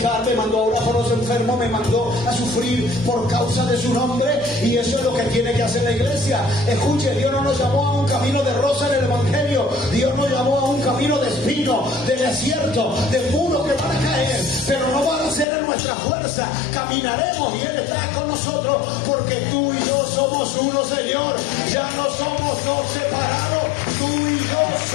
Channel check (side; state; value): right; drops out; at 15.5 s